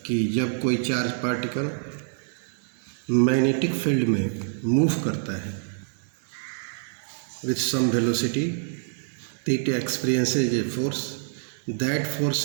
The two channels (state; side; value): silent; left; digital silence